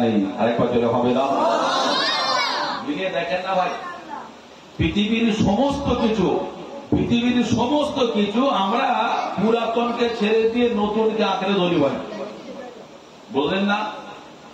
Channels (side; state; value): both; identical; correlation 1.00